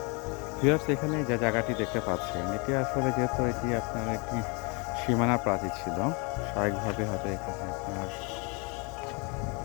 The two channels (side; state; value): right; quieter; 31.5 dB